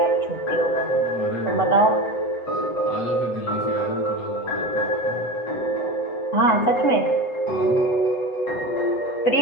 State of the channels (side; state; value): right; late; 8.0 ms